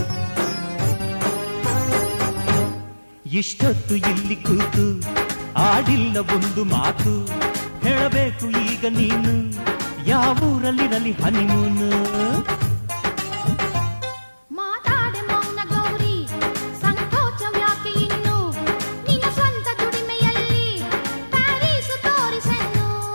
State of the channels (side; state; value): both; inverted; correlation -1.00